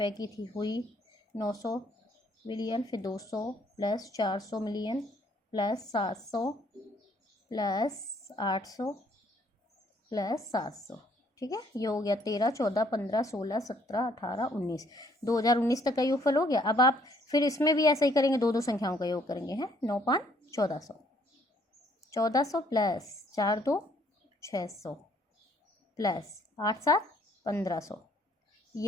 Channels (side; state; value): both; normal; correlation 0.65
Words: की थी, हुई 900 मिलियन, फिर 200 plus 400 million plus 700 plus 800 plus 700। ठीक है, ये हो गया 13 14 15 16 17 18 19, 2019 तक का योगफल हो गया। अब आप फिर इसमें भी ऐसा ही करेंगे, दो संख्याओं का योग करेंगे, हैं 9 5 1400, 1400 प्लस 4 2 600 प्लस 8 7 1500,